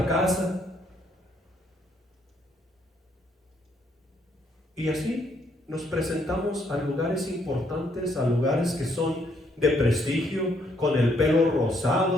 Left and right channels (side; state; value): both; normal; correlation 0.71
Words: casa. Y así nos presentamos a lugares importantes, a lugares que son de prestigio, con el pelo